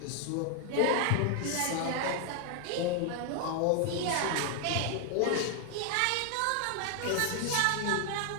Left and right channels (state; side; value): different; both; correlation 0.00